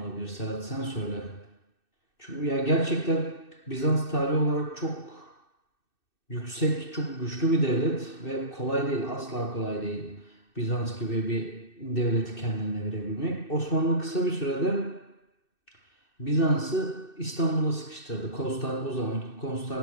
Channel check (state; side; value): late; right; 2.6 ms